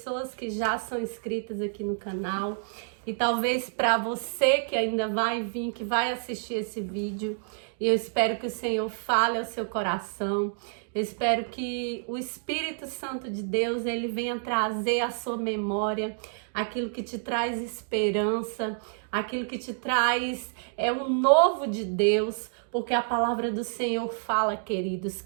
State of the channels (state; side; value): silent; left; digital silence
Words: que já são inscritas aqui no canal. E talvez para você que ainda vai vir, que vai assistir esse vídeo, e eu espero que o Senhor fale ao seu coração. Eu espero que o Espírito Santo de Deus, ele venha trazer à sua memória aquilo que te traz esperança, aquilo que te traz um novo de Deus, porque a palavra do Senhor fala, queridos,